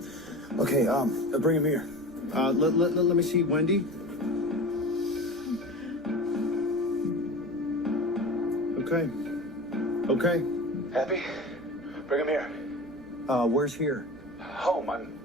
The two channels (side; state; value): both; normal; correlation 0.32